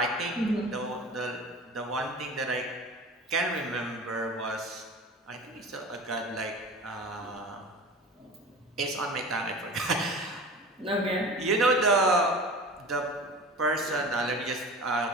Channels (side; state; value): both; normal; correlation 0.36